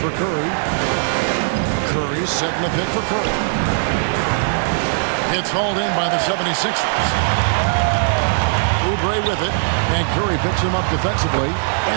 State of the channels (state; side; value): silent; left; digital silence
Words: Curry. Curry setting the pick for Curry. It's hauled in by the 76ers. Oubre with it. And Curry picks him up defensively.